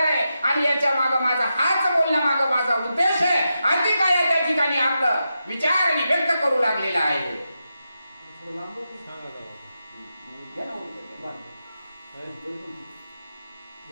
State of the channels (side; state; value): both; inverted; correlation -0.88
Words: आहे. आणि याच्या माग माझा हाच बोलण्यामाग माझा उद्देश आहे. अति काय त्या ठिकाणी आपलं विचार आणि व्यक्त करू लागलेला आहे.